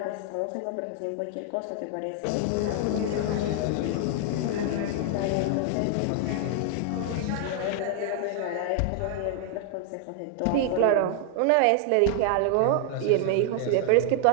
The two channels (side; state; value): both; different; correlation 0.00